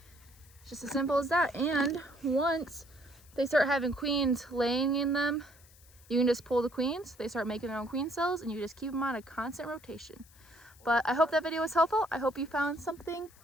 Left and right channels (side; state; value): left; noise; hiss, 26 dB below the sound